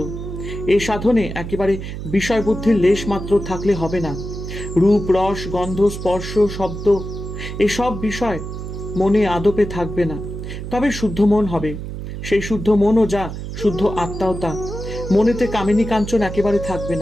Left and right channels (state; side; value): noise; right; hum, 7 dB below the sound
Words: এই সাধনে একেবারে বিষয় বুদ্ধির লেশ মাত্র থাকলে হবে না। রূপ, রস, গন্ধ, স্পর্শ, শব্দ এসব বিষয় মনে আদপে থাকবে না, তবে শুদ্ধ মন হবে। সেই শুদ্ধ মনও যা, শুদ্ধ আত্মাও তা। মনেতে কামিনী কাঞ্চন একেবারে থাকবে